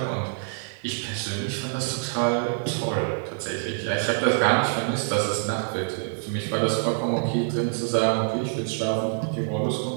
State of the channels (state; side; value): silent; left; digital silence